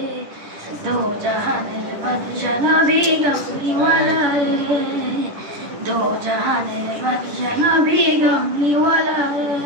দো জাহানের বাদশা নবী কামলিওয়ালা রে, দো জাহানের বাদশা নবী কামলিওয়ালা রে।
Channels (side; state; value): left; late; 10 ms